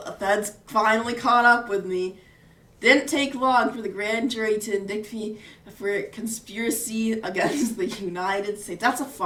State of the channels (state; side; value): identical; both; correlation 1.00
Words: feds finally caught up with me. Didn't take long for the grand jury to indict me for conspiracy against the United States. That's a